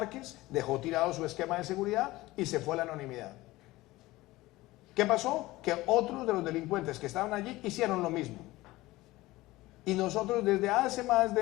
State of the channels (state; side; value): quieter; right; 18.8 dB